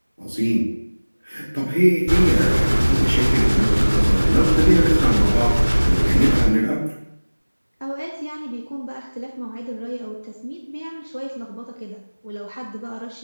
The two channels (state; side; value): inverted; both; correlation -1.00